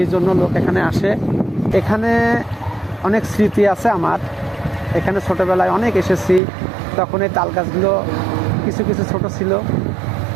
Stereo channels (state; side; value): drops out; left; at 6.4 s